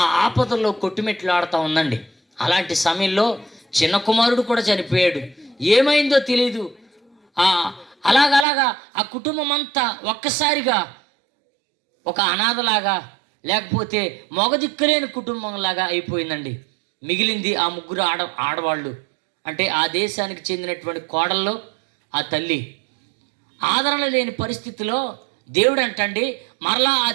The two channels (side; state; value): left; drops out; at 8.5 s